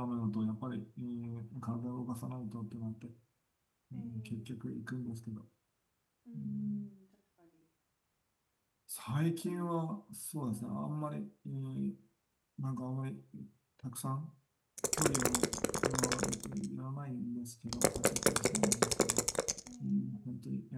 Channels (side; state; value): both; identical; correlation 1.00